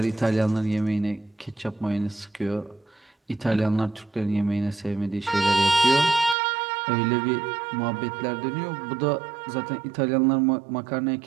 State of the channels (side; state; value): left; drops out; at 6.4 s